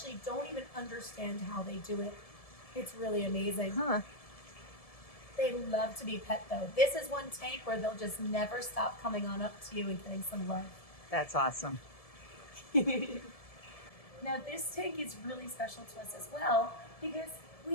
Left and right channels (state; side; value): late; right; 1.7 ms